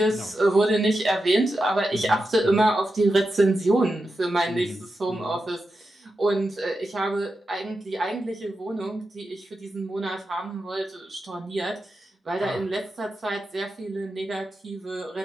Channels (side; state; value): both; normal; correlation 0.89